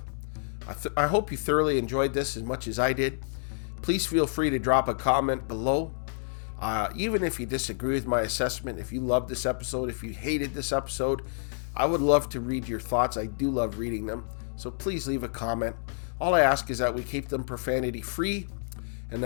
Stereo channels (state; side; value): silent; right; digital silence